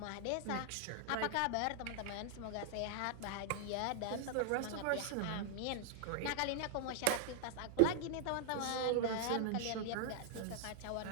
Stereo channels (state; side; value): different; both; correlation 0.00